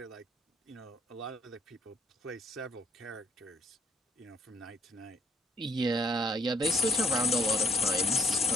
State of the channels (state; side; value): normal; both; correlation 0.64